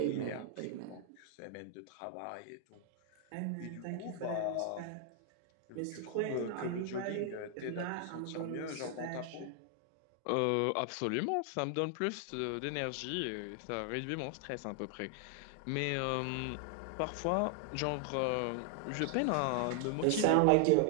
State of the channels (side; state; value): both; different; correlation 0.00